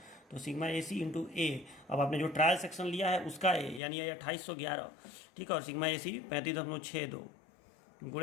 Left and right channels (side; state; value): right; drops out; at 3.8 s